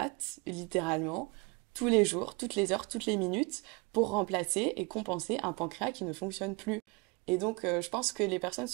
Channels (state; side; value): quieter; left; 29.3 dB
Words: littéralement tous les jours, toutes les heures, toutes les minutes pour remplacer et compenser un pancréas qui ne fonctionne plus. Et donc, je pense que les personnes